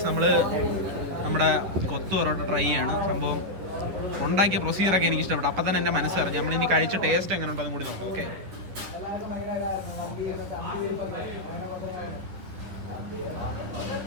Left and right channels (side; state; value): left; late; 11 ms